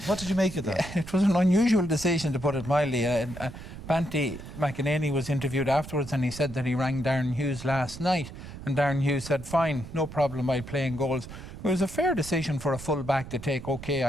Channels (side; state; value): right; noise; rumble, 13 dB below the sound